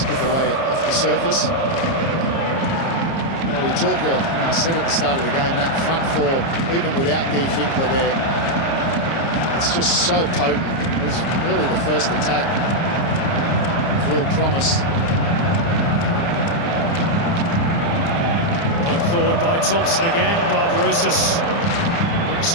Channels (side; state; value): right; late; 30 ms